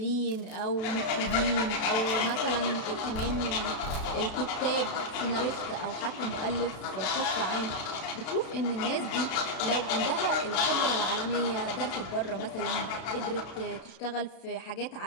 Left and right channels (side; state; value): right; late; 32 ms